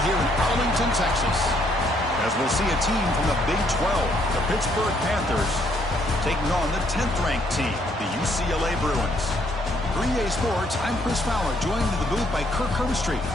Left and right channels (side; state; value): both; normal; correlation 0.69